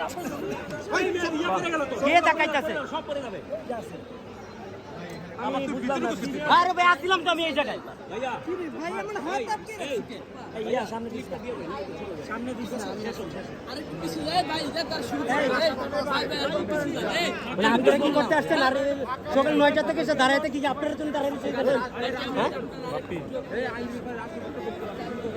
কে দেখাইতেছে? সব পড়ে যাবে। আমি বুঝলাম না। আরে ভাই আসছিলাম তো আমি এই জায়গায়। ভাইয়া ভাই আমার হাত আটকে রেখেছে। এই সামনে দিস না, সামনে দিস না। আরে কিছু যায় ভাই, যা তার শুরু করে। মানে আপনারা কি করতে আসছেন? আর সকাল 9টা থেকে এসে দাঁড়াইতে কি আপনারা তুমি দাঁড়াইতে এখানে?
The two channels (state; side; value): identical; both; correlation 1.00